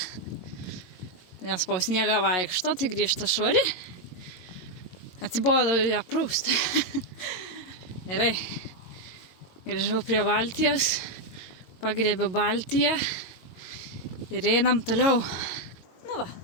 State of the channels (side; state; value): right; late; 22 ms